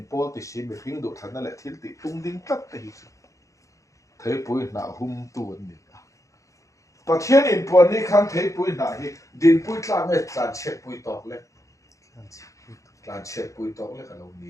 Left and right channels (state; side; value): late; right; 0.15 ms